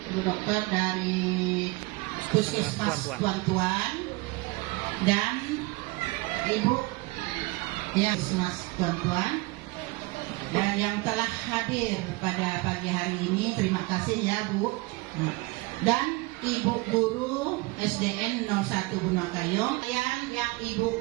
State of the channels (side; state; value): left; quieter; 23.2 dB